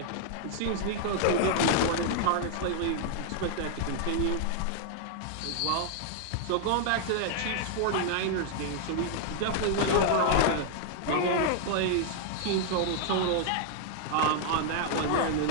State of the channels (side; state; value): both; different; correlation 0.00